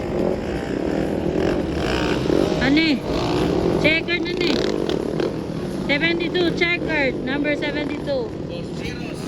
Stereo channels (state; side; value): identical; both; correlation 1.00